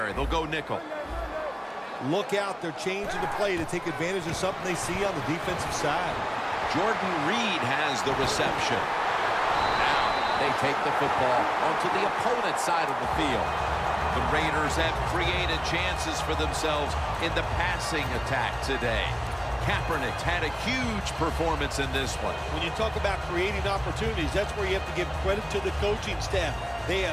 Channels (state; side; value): identical; both; correlation 1.00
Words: They'll go nickel. Look out, they're changing the play to take advantage of something they see on the defensive side. Jordan Reed has the reception. Now they take the football onto the opponent's side of the field. The Raiders have created chances for themselves in the passing attack today. Kaepernick had a huge performance in this one. When you talk about creating opportunities, that's where you have to give credit to the coaching staff. They